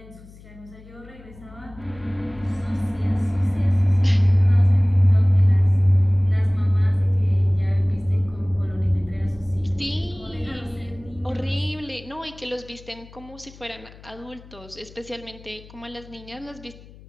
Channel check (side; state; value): left; noise; hum, 21 dB below the sound